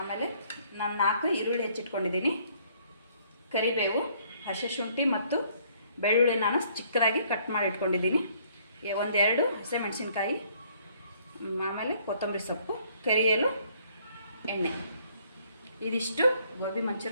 ನಾನು 4 ಈರುಳ್ಳಿ ಹೆಚ್ಚಿಟ್ಕೊಂಡಿದ್ದೀನಿ. ಕರಿಬೇವು, ಹಸಿ ಶುಂಠಿ ಮತ್ತು ಬೆಳ್ಳುಳ್ಳಿ ನಾನು ಚಿಕ್ಕದಾಗಿ ಕಟ್ ಮಾಡಿ ಇಟ್ಕೊಂಡಿದ್ದೀನಿ. 1-2 ಹಸಿಮೆಣಸಿನ್ಕಾಯಿ, ಆಮೇಲೆ ಕೊತ್ತಂಬರಿ ಸೊಪ್ಪು, ಕರಿಯಲು ಎಣ್ಣೆ. ಇದಿಷ್ಟು ಗೋಬಿ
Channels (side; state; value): both; inverted; correlation -0.63